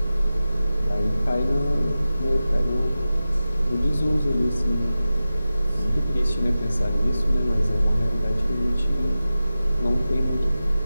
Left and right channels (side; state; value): both; inverted; correlation -0.94